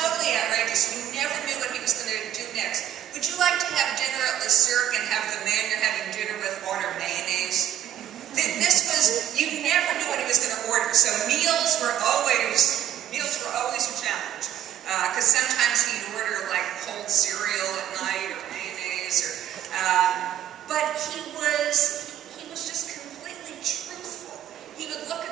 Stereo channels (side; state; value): left; quieter; 11.3 dB